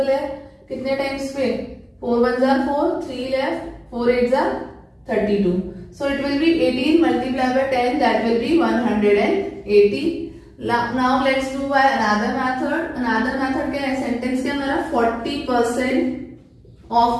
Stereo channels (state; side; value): identical; both; correlation 1.00